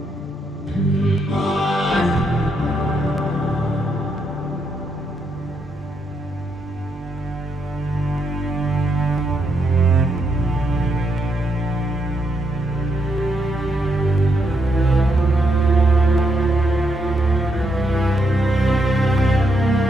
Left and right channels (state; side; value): normal; both; correlation 0.78